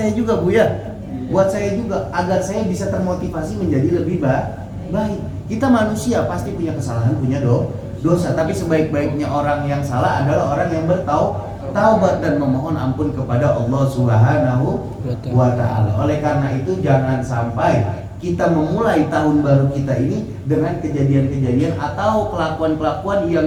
juga, Bu ya. Buat saya juga agar saya bisa termotivasi menjadi lebih baik. Kita manusia pasti punya kesalahan, punya dosa. Tapi sebaik-baiknya orang yang salah adalah orang yang bertaubat dan memohon ampun kepada Allah Subhanahu wa ta'ala. Oleh karena itu jangan sampai kita memulai tahun baru kita ini dengan kejadian-kejadian atau kelakuan-kelakuan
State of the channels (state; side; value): identical; both; correlation 1.00